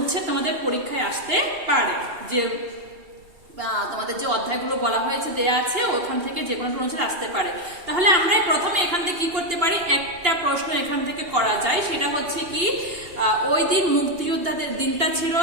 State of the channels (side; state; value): left; late; 2.7 ms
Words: তোমাদের পরীক্ষায় আসতে পারে। যে তোমাদের যে অধ্যায়গুলো বলা হয়েছে দেয়া আছে ওখান থেকে যে কোনো অনুচ্ছেদ আসতে পারে। তাহলে আমরা প্রথমে এখান থেকে কি করতে পারি, একটা প্রশ্ন এখান থেকে করা যায়, সেটা হচ্ছে কি ওই দিন মুক্তিযোদ্ধাদের দিনটা ছিল